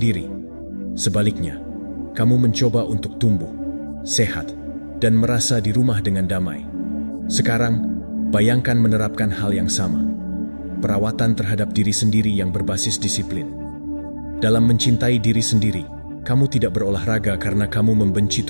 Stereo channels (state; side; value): inverted; both; correlation -1.00